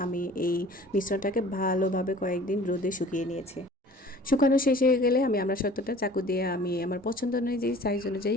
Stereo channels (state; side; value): normal; both; correlation 0.47